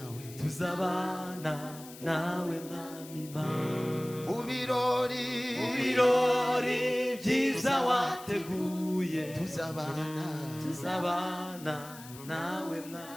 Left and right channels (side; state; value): left; noise; hiss, 17 dB below the sound